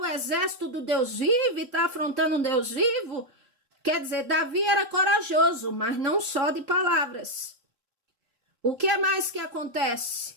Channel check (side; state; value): left; late; 3.7 ms